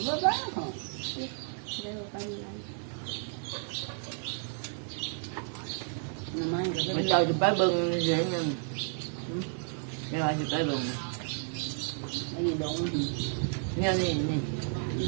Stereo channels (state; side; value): silent; left; 57 dB below the other